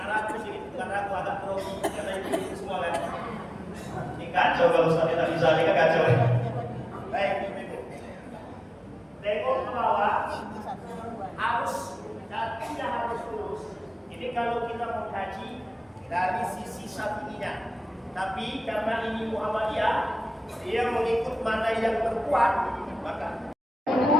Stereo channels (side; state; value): both; normal; correlation 0.97